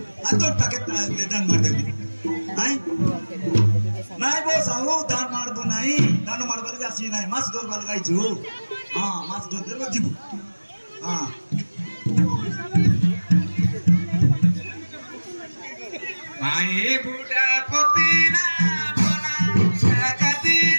atau paket dan mar deh ai nai bos aku dan mar do nai dano mar balik asi nai mas dor balik aja mas dor deh jibu Mai buda potina bona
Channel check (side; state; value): both; inverted; correlation -1.00